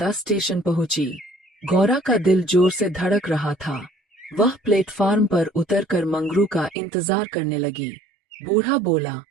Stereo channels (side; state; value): left; drops out; at 6.8 s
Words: स्टेशन पहुंची। गौरा का दिल जोर से धड़क रहा था। वह प्लेटफार्म पर उतरकर मंगरू का इंतजार करने लगी। बूढ़ा बोला,